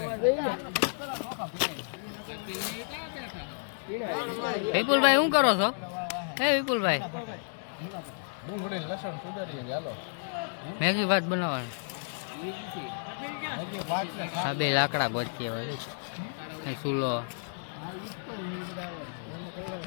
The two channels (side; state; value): right; silent; digital silence